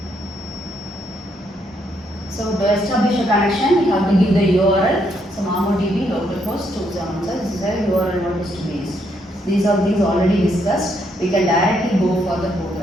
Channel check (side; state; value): both; normal; correlation 0.75